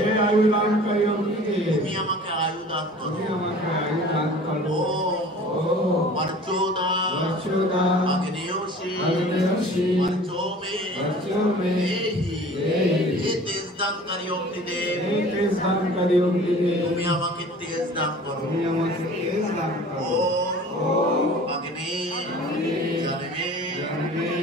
তুমি আমাকে আয়ুদান করো। ওম বর্চোদা অগ্নিয়োশী বর্চোমে দেহি। হে তেজদানকারী অগ্নিদেব, তুমি আমাকে তেজ দান করো। ওম অগ্নি জনমে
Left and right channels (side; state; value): both; normal; correlation 0.45